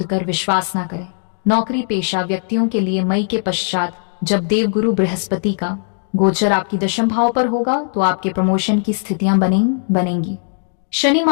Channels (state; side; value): silent; right; 66 dB below the other